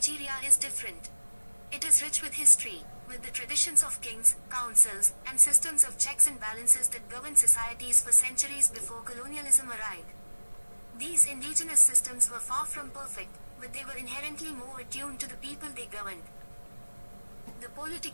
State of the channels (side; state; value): both; inverted; correlation -1.00